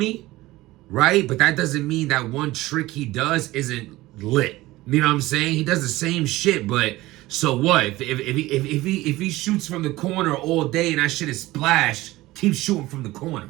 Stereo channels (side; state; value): left; quieter; 18.2 dB